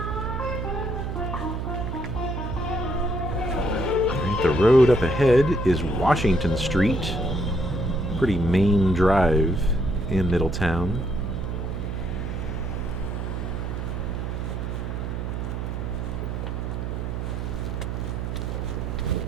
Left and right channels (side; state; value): right; noise; hum, 3 dB below the sound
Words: Alright, the road up ahead is Washington Street. Pretty main drive in Middletown.